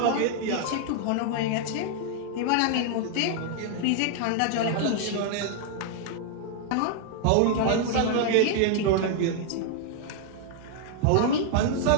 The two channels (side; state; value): both; different; correlation -0.01